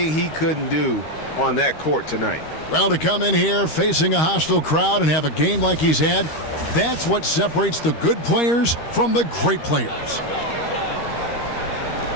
he couldn't do on that court tonight. Well, to come in here facing a hostile crowd and have a game like he's had, that's what separates the good players from the great players.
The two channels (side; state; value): right; late; 13 ms